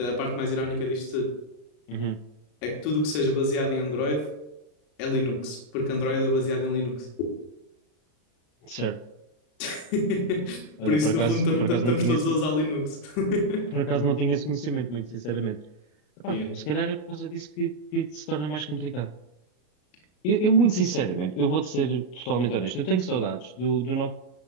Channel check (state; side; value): late; right; 33 ms